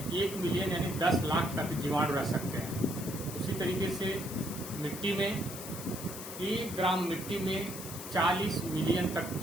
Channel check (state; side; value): noise; left; hiss, 10 dB below the sound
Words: मिलियन यानी 10 लाख तक जीवाणु रह सकते हैं। उसी तरीके से मिट्टी में 1 ग्राम मिट्टी में 40 मिलियन तक